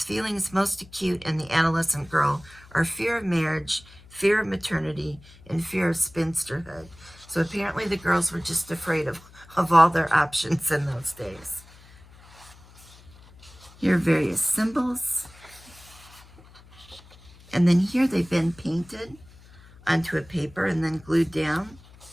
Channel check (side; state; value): left; noise; hum, 23 dB below the sound